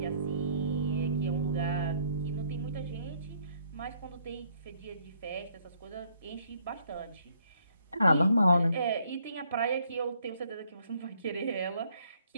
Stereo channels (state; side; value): inverted; both; correlation -0.67